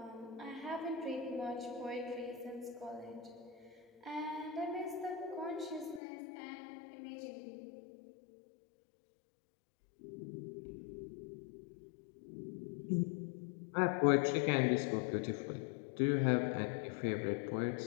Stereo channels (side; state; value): right; drops out; at 6.0 s